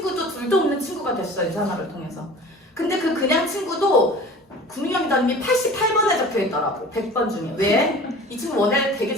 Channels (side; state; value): both; normal; correlation 0.41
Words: 둘도 없는 친구가 됐어요. 유산화를 통해서. 근데 그 그냥 친구도 구민경 리더님이 88번에 적혀있더라고. 100번 중에. 왜? 이 친구 원래 되게